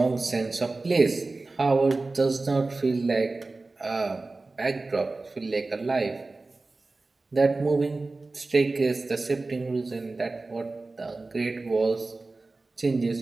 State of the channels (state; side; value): quieter; left; 3.4 dB